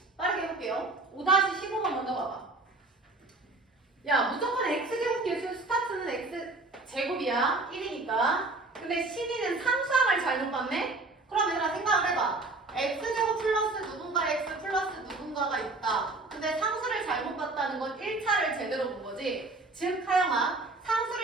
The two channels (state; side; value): quieter; left; 3.3 dB